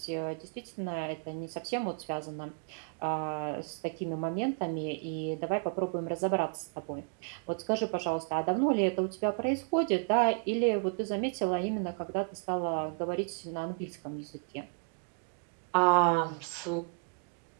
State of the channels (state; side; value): quieter; left; 38.0 dB